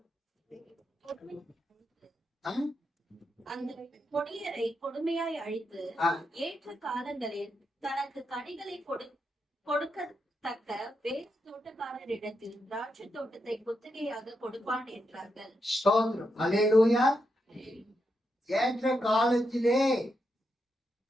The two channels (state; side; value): normal; both; correlation 0.84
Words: அந்த கொடியரை கொடுமையாய் அழித்து ஏற்ற காலங்களில் தனக்கு கனிகளை கொடுக்கத்தக்க வேறு தோட்டக்காரரிடத்தில் திராட்சை தோட்டத்தை குத்தகையாக கொடுப்பான் என்றார்கள். அல்லேலூயா. ஏற்ற காலத்திலே